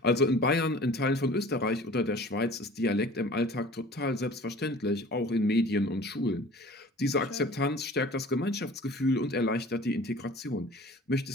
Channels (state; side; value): normal; both; correlation 0.45